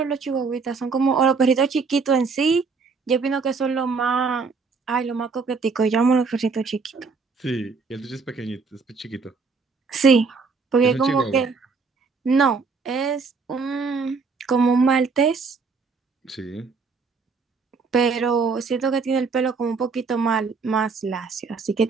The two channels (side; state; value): left; quieter; 4.8 dB